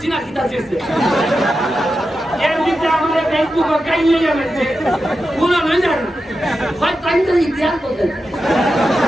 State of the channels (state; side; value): normal; both; correlation 0.90